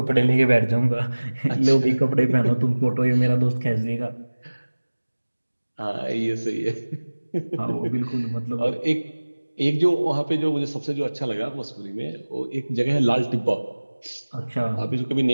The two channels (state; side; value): inverted; both; correlation -1.00